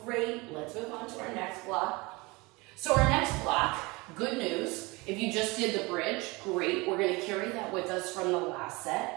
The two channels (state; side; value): quieter; left; 24.7 dB